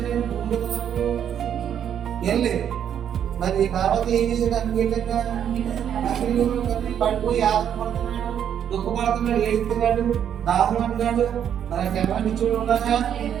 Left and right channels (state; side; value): quieter; left; 9.1 dB